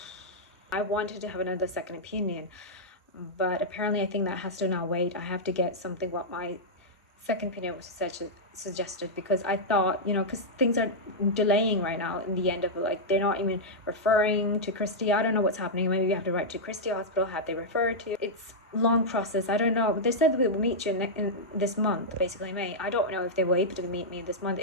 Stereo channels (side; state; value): both; normal; correlation -0.08